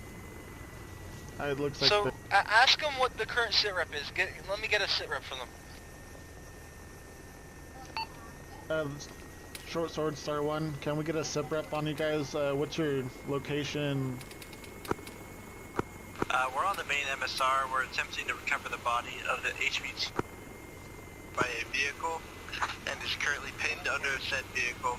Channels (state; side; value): identical; both; correlation 1.00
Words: it looks like So ask them what the current sit rep is. Let me get a sit rep from them. Short Sword Star 1. Can we get a sip rep on you guys? What's your location? We're on the main MSR. We're attempting to recover the body of the HVT by a vehicle and is currently pinned under said vehicle.